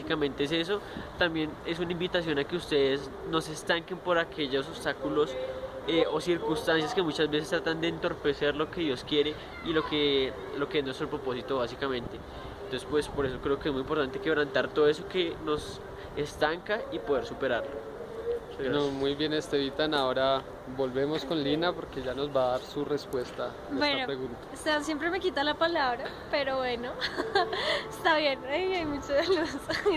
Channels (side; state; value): both; identical; correlation 1.00